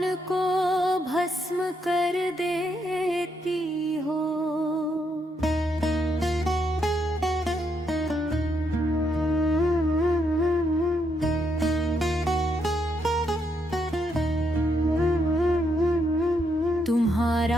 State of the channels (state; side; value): normal; both; correlation 0.77